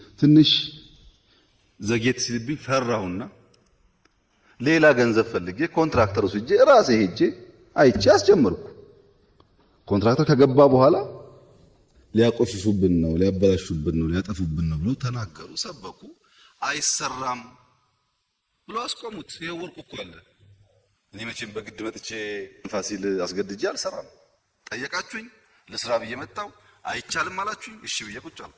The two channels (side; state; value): both; identical; correlation 1.00